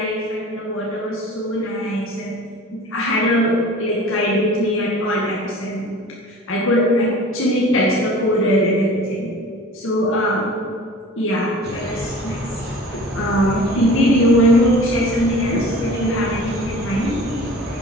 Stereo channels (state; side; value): normal; both; correlation 0.42